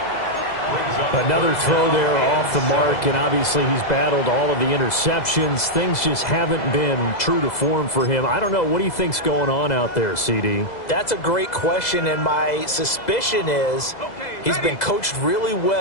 Another throw there off the mark, and obviously he's battled all of the interceptions. Things just haven't been true to form for him. I don't know. What do you think's going on out there, CD? That's a great question, and my suspicion is he's been coached really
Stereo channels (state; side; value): late; right; 2.0 ms